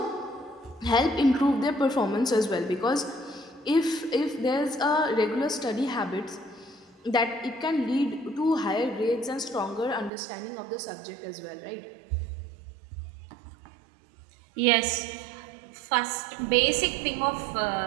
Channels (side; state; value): left; drops out; at 10.1 s